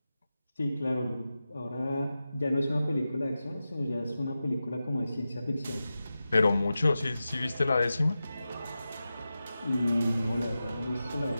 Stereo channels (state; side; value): inverted; both; correlation -0.93